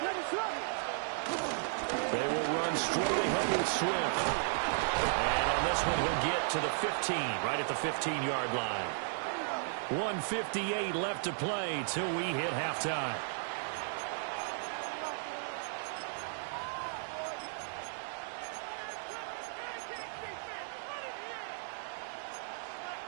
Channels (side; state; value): left; silent; 54 dB below the other